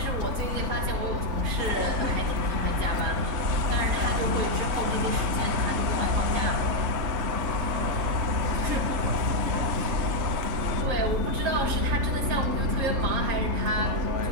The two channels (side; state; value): left; late; 3.2 ms